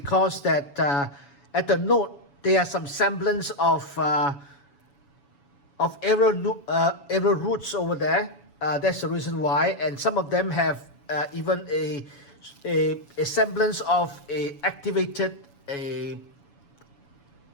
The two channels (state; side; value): late; right; 7.1 ms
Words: that at the node there are some semblance of aerial roots over there. That's the reason why, and some of them have even a semblance of a activated a